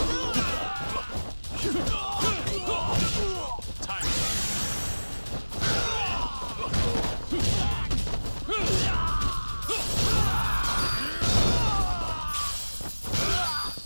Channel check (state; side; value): inverted; both; correlation -1.00